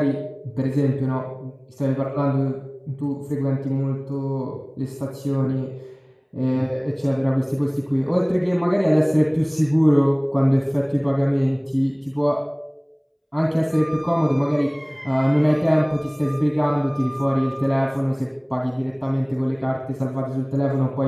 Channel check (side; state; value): both; identical; correlation 1.00